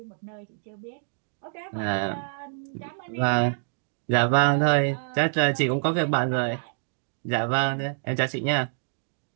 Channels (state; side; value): silent; left; digital silence